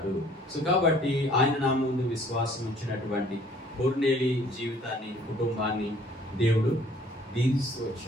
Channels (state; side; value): normal; both; correlation 0.57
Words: సో కాబట్టి ఆయన నా ముందు విశ్వాసం ఉంచినటువంటి కొర్నేలి జీవితాన్ని, కుటుంబాన్ని దేవుడు దీవిస్తూ